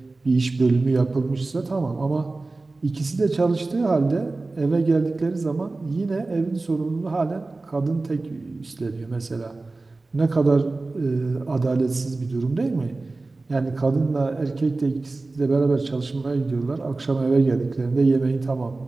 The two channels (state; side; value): quieter; left; 3.4 dB